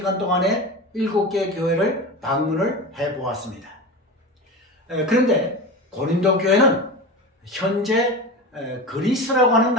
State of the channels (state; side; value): normal; both; correlation 0.27